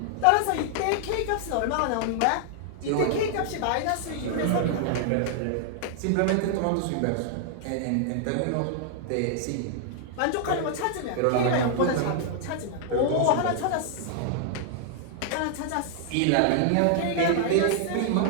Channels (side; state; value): both; different; correlation 0.00